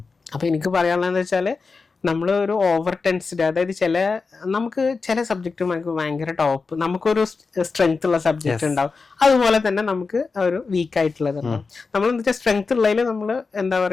അപ്പൊ എനിക്ക് പറയാനുള്ളതെന്ന് വെച്ചാല് നമ്മൾ ഒരു ഓവർ ടെൻസ്ഡ്, അതായത് നമുക്ക് ചില സബ്ജക്റ്റ് നമുക്ക് ഭയങ്കര ടോപ്പ്, നമുക്കൊരു സ്ട്രെങ്ത് ഉള്ള സബ്ജക്റ്റ് ഉണ്ടാവും, അതുപോലെ തന്നെ നമുക്ക് ഒരു വീക്ക് ആയിട്ടുള്ളത് ഉണ്ടാവും. നമ്മൾ എന്താ വെച്ചാൽ സ്ട്രെങ്ത് ഉള്ളതിൽ നമ്മൾ എന്താ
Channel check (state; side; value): quieter; right; 4.5 dB